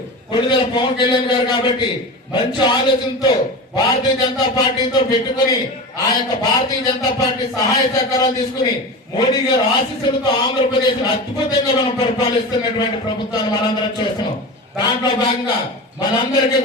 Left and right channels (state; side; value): normal; both; correlation 0.28